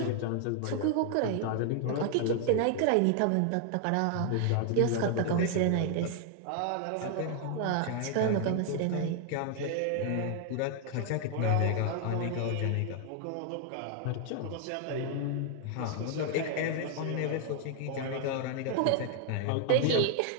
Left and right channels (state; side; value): different; both; correlation 0.00